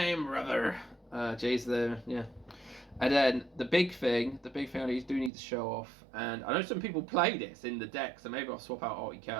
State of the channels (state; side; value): drops out; left; at 5.3 s